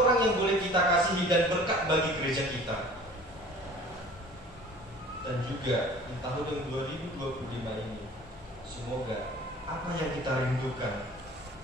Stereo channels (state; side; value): normal; both; correlation 0.46